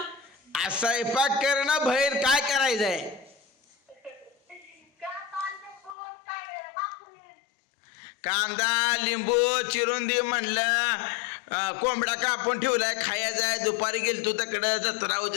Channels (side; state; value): right; drops out; at 6.0 s